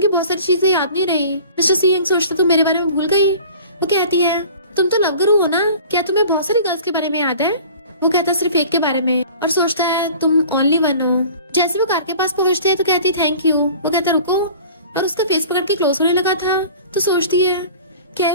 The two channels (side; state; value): both; inverted; correlation -0.44